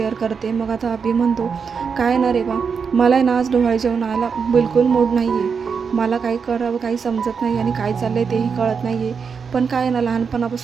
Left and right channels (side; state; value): left; quieter; 6.0 dB